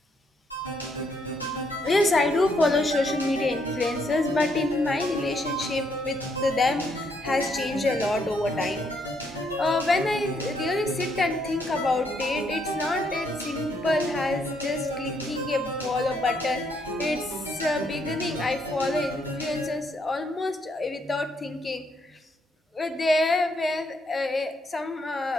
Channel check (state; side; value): normal; both; correlation 0.73